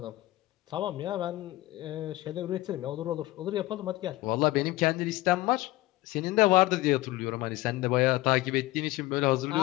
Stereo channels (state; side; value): quieter; right; 18.3 dB